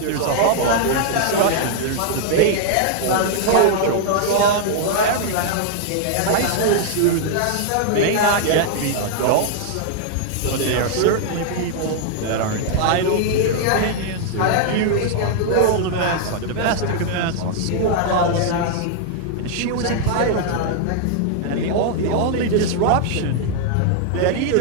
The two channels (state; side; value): different; both; correlation -0.01